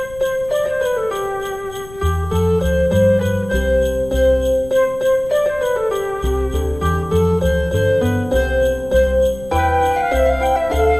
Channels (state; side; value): noise; left; rumble, 18 dB below the sound